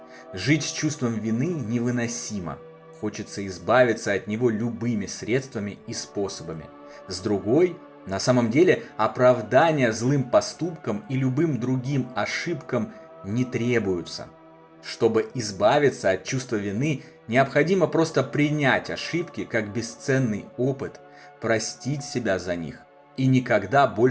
Жить с чувством вины невыносимо. Хочется избавиться от него любыми средствами и способами. С другой, на самом деле, оправдания злым поступкам и любым другим ошибкам не требуются. Чтобы избавиться от чувства вины, необходимо просто принять ошибки как бесценный опыт, простить себя за них и никогда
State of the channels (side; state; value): both; identical; correlation 1.00